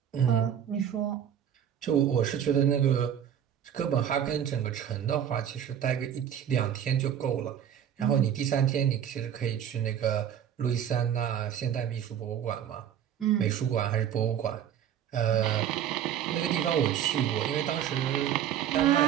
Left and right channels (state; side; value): quieter; left; 9.5 dB